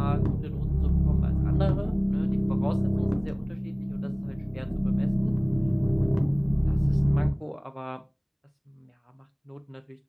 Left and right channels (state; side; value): identical; both; correlation 1.00